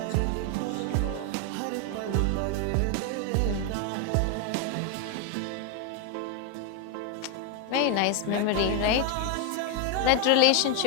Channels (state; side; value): different; both; correlation 0.01